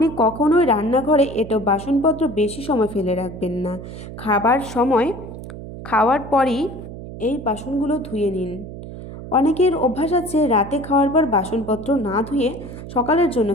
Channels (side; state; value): right; noise; hum, 12 dB below the sound